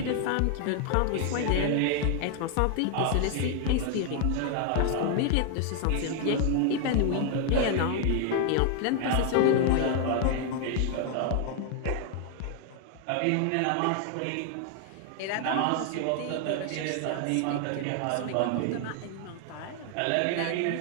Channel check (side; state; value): both; different; correlation 0.00